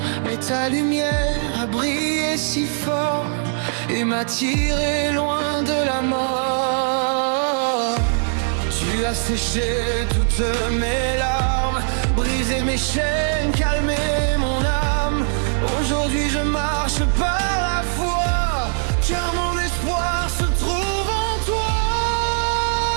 Mais ta lumière a brillé si fort et m'a tiré loin de la mort. Tu as séché toutes mes larmes, brisé mes chaînes, calmé mon âme. Aujourd'hui je marche par la foi, car mon espoir se trouve en toi.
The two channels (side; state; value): left; silent; digital silence